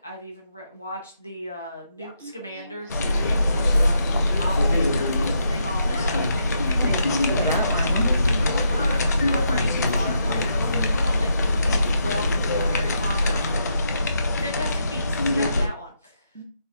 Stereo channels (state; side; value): inverted; both; correlation -0.79